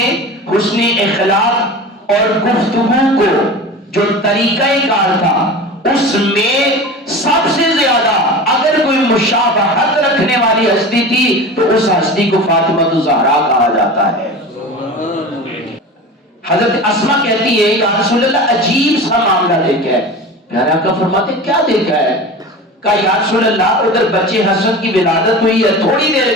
حسن اخلاق اور گفتگو کو جو طریقہ کار تھا اس میں سب سے زیادہ اگر کوئی مشابہت رکھنے والی ہستی تھی تو اس ہستی کو فاطمہ الزہرا کہا جاتا ہے. حضرت اسما کہتی ہے یا رسول اللہ عجیب سا معاملہ دیکھا ہے. پیارے آقا فرماتے کیا دیکھا ہے؟ کہا یا رسول اللہ ادھر بچے حسن کی ولادت ہوئی ہے، تھوڑی دیر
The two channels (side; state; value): both; normal; correlation 0.33